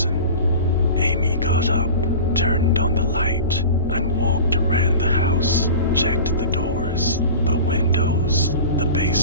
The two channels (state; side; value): inverted; both; correlation -0.35